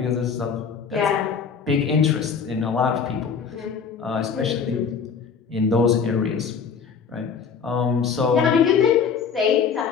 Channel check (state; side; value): quieter; right; 6.3 dB